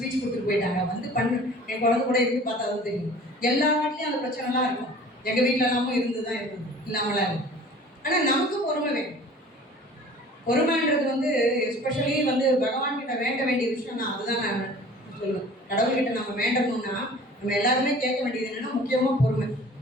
கொடுத்துட்டு போயிட்டாங்க, வந்து பண்ணு. என் குழந்தை கூட இருந்து பார்த்தா தான் தெரியும். எல்லா வீட்லேயும் அந்த பிரச்சனைலாம் இருக்கும். எங்கள் வீட்டில் எல்லாமும் இருந்து தான் இருக்குது, இல்லாமலாம் இருக்கும். ஆனால் நமக்கு பொறுமை வேணும். பொறுமைன்றது வந்து எஸ்பெஷலி வந்து பகவான் கிட்ட வேண்ட வேண்டிய விஷயம் தான். அதுதான் நான் சொல்லுவேன். கடவுள்கிட்ட நம்ம வேண்டணும்னா நம்ம எல்லாருமே கேட்க வேண்டியது என்னன்னா முக்கியமாக பொறுமை.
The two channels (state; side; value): normal; both; correlation 0.46